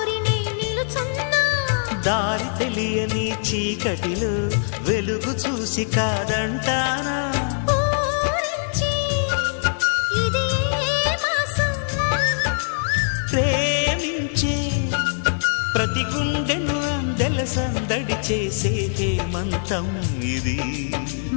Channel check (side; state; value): right; silent; 64 dB below the other